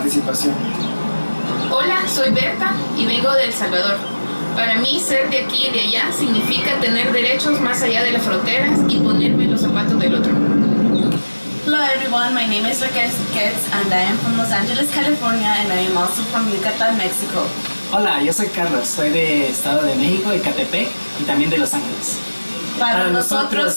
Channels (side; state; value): both; inverted; correlation -1.00